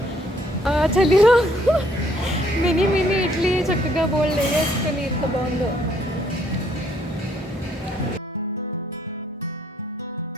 చలిలో మినీ మినీ ఇడ్లీ చక్కగా బోల్డ్ వేసుకొని ఎంత బాగుందో.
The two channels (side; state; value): both; normal; correlation 0.66